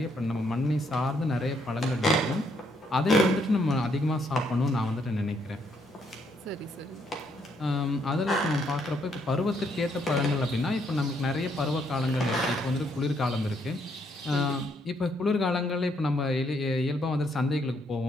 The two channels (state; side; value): normal; both; correlation 0.72